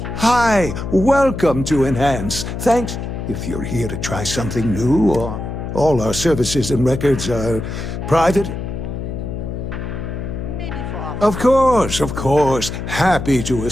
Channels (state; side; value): noise; left; hum, 6 dB below the sound